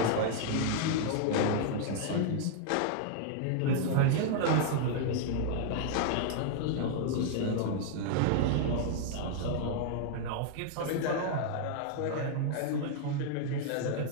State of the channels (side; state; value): both; different; correlation 0.00